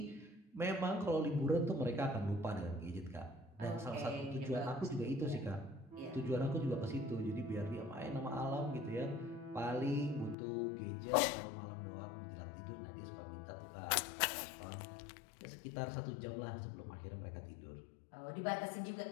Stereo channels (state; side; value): drops out; right; at 10.4 s